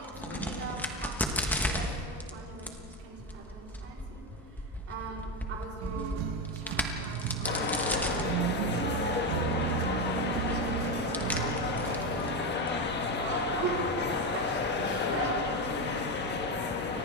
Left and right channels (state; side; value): normal; both; correlation 0.13